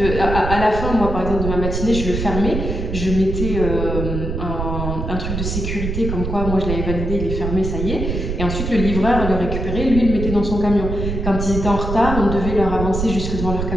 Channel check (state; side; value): noise; right; rumble, 3 dB below the sound